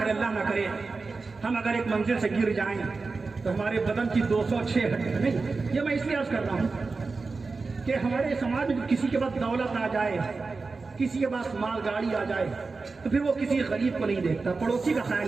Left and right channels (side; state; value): left; quieter; 4.1 dB